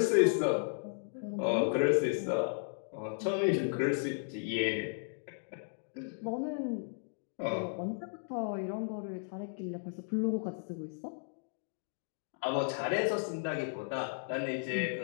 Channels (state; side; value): silent; right; digital silence